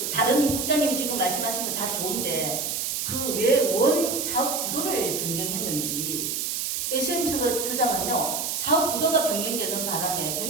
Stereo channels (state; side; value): noise; right; hiss, 1 dB below the sound